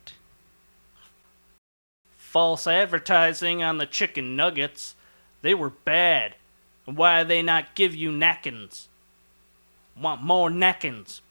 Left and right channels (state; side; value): inverted; both; correlation -1.00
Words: False advertising on the chicken nuggets. They were bad. And why they not give you napkins? Want more napkins,